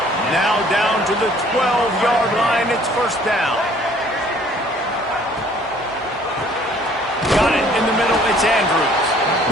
Now down to the 12-yard line. It's first down. Got it in the middle, it's Andrews.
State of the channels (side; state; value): both; normal; correlation 0.57